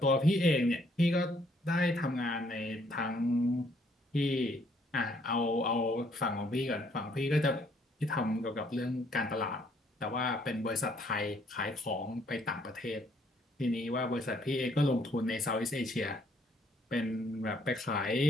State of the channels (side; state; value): both; normal; correlation 0.66